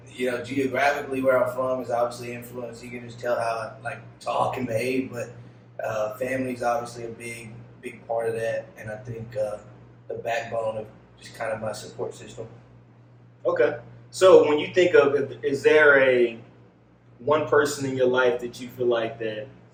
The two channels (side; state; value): both; identical; correlation 1.00